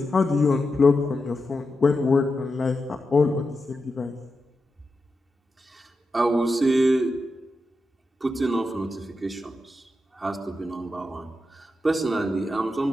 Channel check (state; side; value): normal; both; correlation 0.88